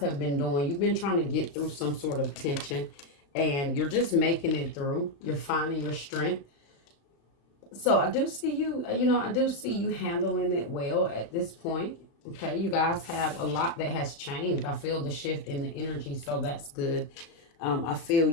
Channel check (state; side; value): late; right; 35 ms